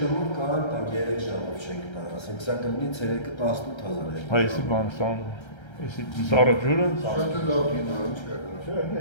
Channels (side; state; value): right; late; 1.3 ms